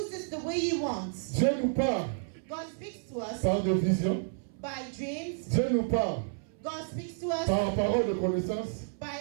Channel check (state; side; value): silent; left; 57 dB below the other